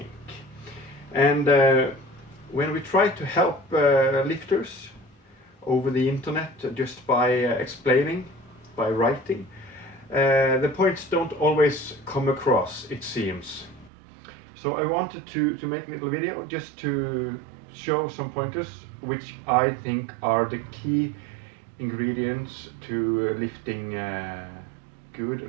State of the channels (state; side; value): drops out; left; at 13.9 s